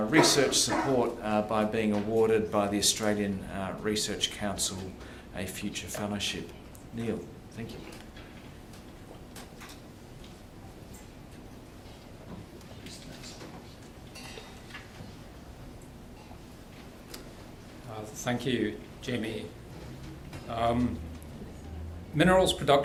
research support by being awarded by the Australian Research Council a Future Fellowship. Neil, thank you. Thank you, Jamie. Minerals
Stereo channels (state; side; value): identical; both; correlation 1.00